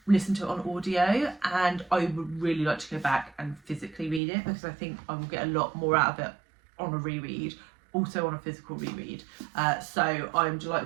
listened to it on audio, and I would really like to go back and physically read it, because I think I will get a lot more out of it on a reread, also on a physical reread. So I'm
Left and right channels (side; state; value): left; drops out; at 4.2 s